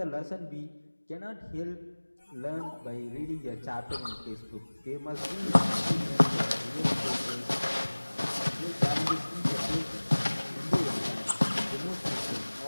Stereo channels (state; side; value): inverted; both; correlation -1.00